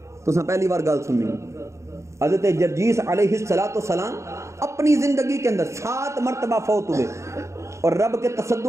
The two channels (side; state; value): left; late; 0.14 ms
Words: تو پہلی بار گل سننی، حضرت جرجیس علیہ السلام اپنی زندگی کے اندر 7 مرتبہ فوت ہوئے اور رب کے